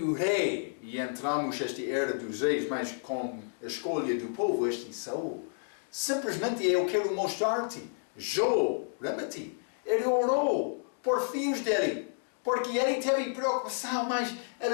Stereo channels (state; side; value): silent; right; digital silence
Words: o rei, e entramos nesta era dos reis, mas com a escolha do povo, este Saul. Simplesmente eu quero mostrar-te, Jó, lembra-te, ele orou por filhos dele, porque ele teve preocupação, mas